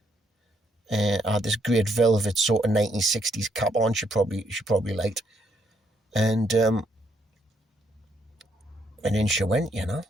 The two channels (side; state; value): both; normal; correlation 0.73